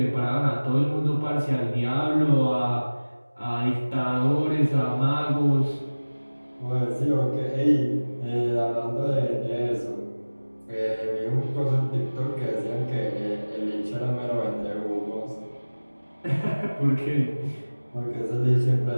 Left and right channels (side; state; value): both; inverted; correlation -1.00